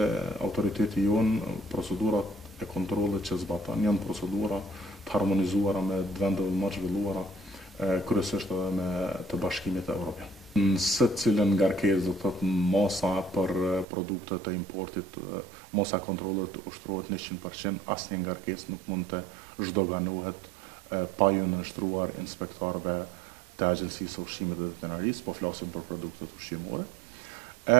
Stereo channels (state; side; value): drops out; left; at 13.9 s